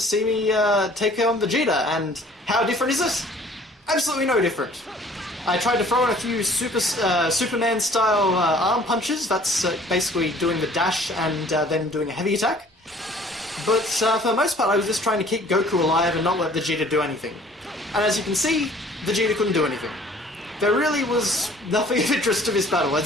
me take on Vegeta, and how different is it? Absolutely no different. I tried to throw in a few Superman-style arm punches. That's basically doing the dash and then doing a heavy attack. But for the most part, I was just trying to keep Goku alive and not let Vegeta do anything. And as you can see, Vegeta couldn't do anything. There really was nothing of interest to this battle.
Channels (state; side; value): normal; both; correlation 0.53